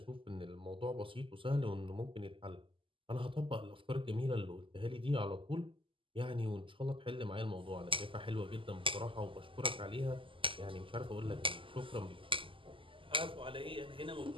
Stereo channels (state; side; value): late; left; 0.25 ms